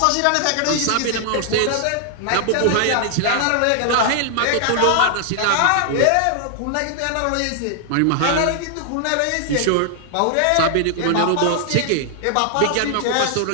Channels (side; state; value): both; different; correlation 0.00